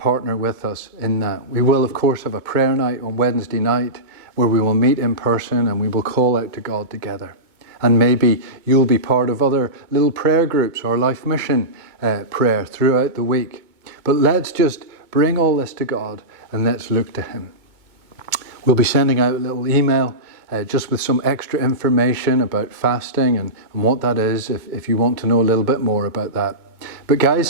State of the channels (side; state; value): left; late; 2.2 ms